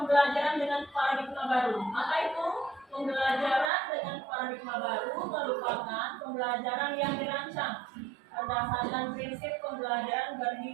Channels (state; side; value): drops out; left; at 3.7 s